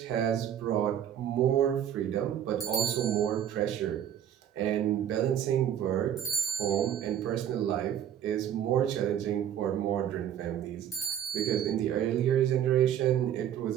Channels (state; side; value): quieter; left; 10.0 dB